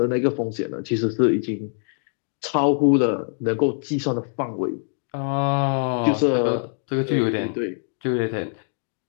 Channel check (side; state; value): right; silent; digital silence